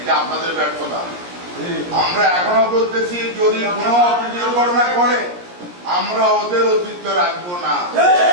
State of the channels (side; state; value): left; late; 17 ms